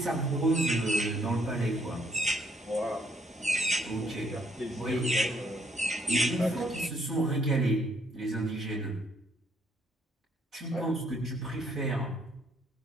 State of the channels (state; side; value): normal; both; correlation 0.68